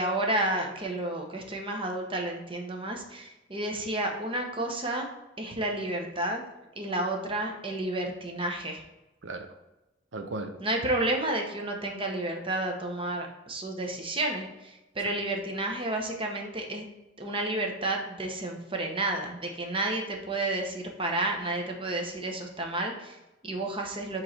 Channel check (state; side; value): normal; both; correlation 0.06